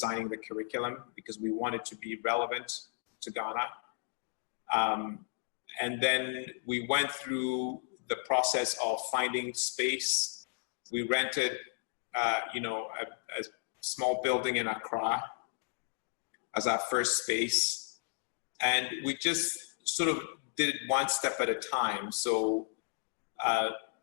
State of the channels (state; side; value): silent; right; 55 dB below the other